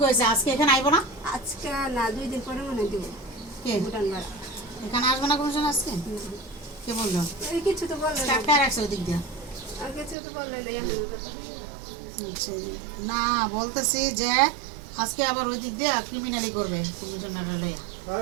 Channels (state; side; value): drops out; left; at 10.2 s